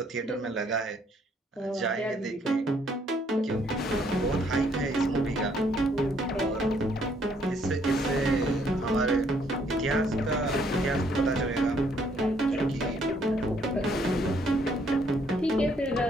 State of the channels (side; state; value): both; normal; correlation 0.67